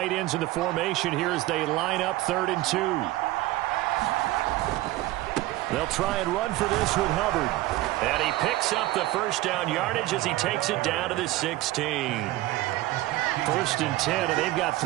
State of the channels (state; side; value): quieter; left; 17.4 dB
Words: ends in the formation here as they line up 3rd and 2. They'll try and run for this with Hubbard. And he picks up the first down yardage as he takes it down to the 16. 1st and 10, and they've got